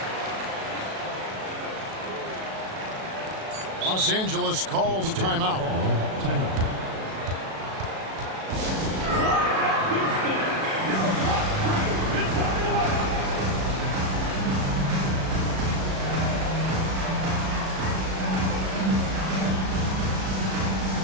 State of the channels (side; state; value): left; late; 37 ms